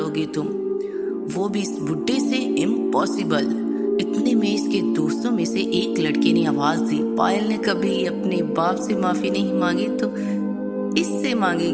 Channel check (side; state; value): both; identical; correlation 1.00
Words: तुम? वो भी इस बुड्ढे से? इम्पॉसिबल। इतने में इसके दोस्तों में से एक लड़के ने आवाज दी, पायल ने कभी अपने बाप से माफी नहीं मांगी तो इससे